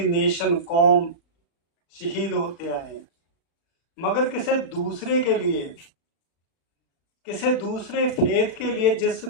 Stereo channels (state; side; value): late; right; 36 ms